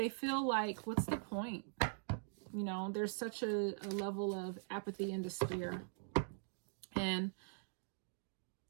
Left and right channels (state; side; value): silent; left; digital silence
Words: feel like, what's the point? You know, there's such a level of apathy and despair. And